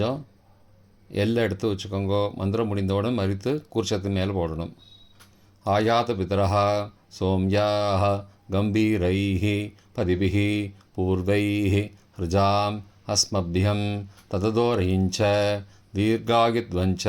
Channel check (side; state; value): both; identical; correlation 1.00